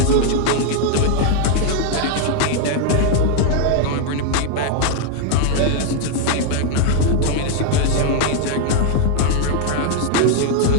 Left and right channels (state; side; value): different; both; correlation 0.01